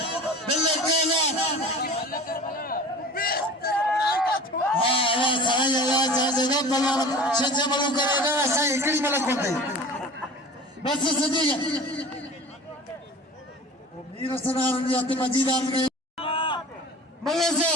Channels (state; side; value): normal; both; correlation 0.39